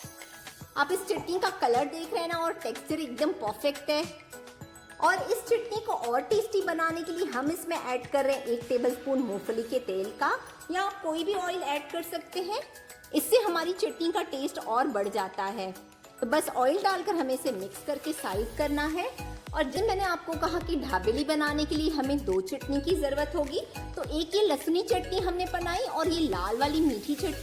आप इस चटनी का कलर देख रहे हैं ना और टेक्सचर एकदम परफेक्ट है। और इस चटनी को और टेस्टी बनाने के लिए हम इसमें ऐड कर रहे हैं 1 टेबलस्पून मूंगफली के तेल का, या आप कोई भी ऑयल ऐड कर सकते हैं। इससे हमारी चटनी का टेस्ट और बढ़ जाता है। तो बस ऑयल डालकर हमें इसे मिक्स करके साइड करना है। और जब मैंने आपको कहा कि ढाबेली बनाने के लिए हमें 2 चटनी की जरूरत होगी, तो एक ये लहसुनी चटनी हमने बनाई और ये लाल वाली मीठी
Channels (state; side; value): identical; both; correlation 1.00